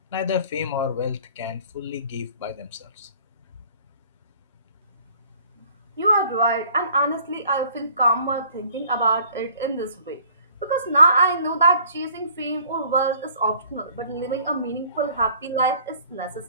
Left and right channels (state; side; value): inverted; both; correlation -0.54